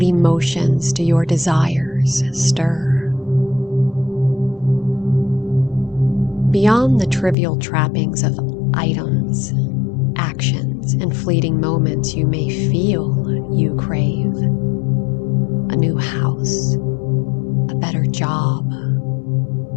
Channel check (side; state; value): right; drops out; at 7.4 s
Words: emotions do your desires stir? Beyond the trivial trappings of items, actions, and fleeting moments you may feel you crave. A new house, a better job,